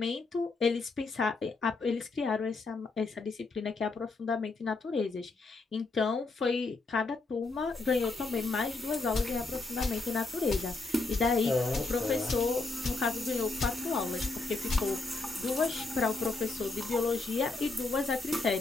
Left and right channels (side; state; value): right; quieter; 3.6 dB